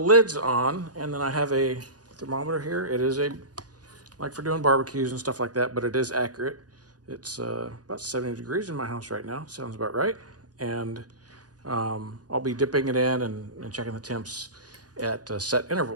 on, and then I have a thermometer here. It is like for doing barbecues and stuff like that, but it is accurate. It's about 70 degrees in my house right now. Sounds about right. And I'll be dipping it in and checking the temps at set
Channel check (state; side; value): late; left; 0.68 ms